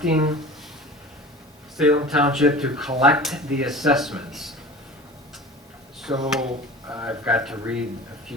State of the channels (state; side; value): normal; both; correlation 0.37